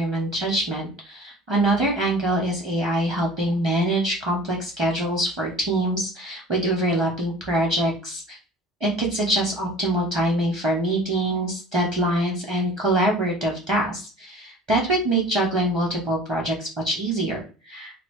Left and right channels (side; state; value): both; normal; correlation 0.44